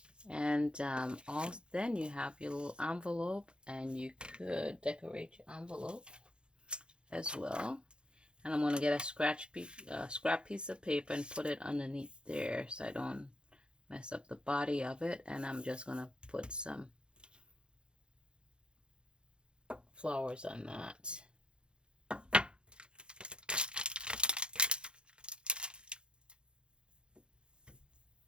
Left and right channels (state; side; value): late; left; 0.053 ms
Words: And then you have your little envelope, and you could decorate your envelope as well. And I'm going to get a scrap piece of paper and put it underneath there so I don't mess up the body of it. And I'm just going to put some flowers on that.